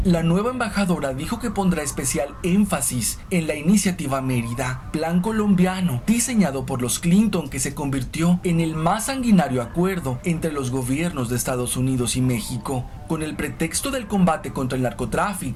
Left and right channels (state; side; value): identical; both; correlation 1.00